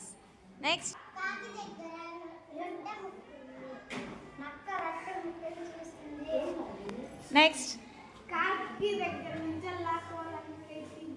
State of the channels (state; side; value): identical; both; correlation 1.00